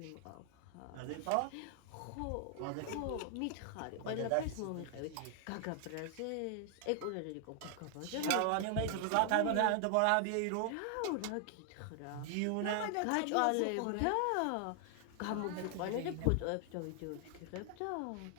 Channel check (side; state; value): both; different; correlation 0.00